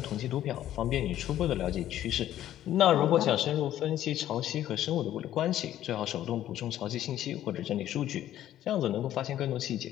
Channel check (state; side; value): quieter; right; 12.4 dB